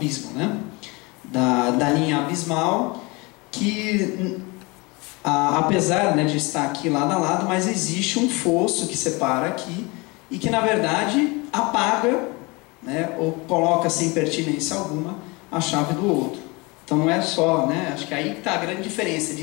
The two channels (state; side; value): quieter; right; 26.3 dB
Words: né? Da linha abismal, que apesar, né, de estar aqui lado a lado, mas existe um fosso que separa aqui e que na verdade apaga, né, ou coloca sem pertinência alguma a chave do outro. Então não é só, né, acho que aí está a grande diferença de